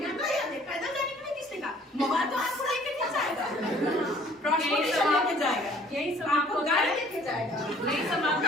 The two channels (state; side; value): normal; both; correlation 0.56